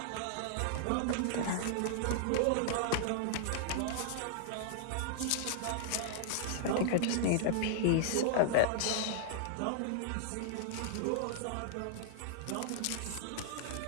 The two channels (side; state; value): both; different; correlation -0.01